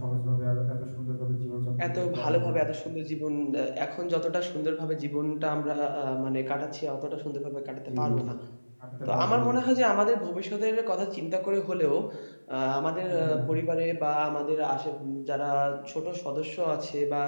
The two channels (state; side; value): inverted; both; correlation -1.00